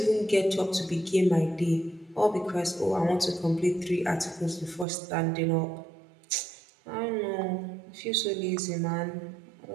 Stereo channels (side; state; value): left; drops out; at 4.9 s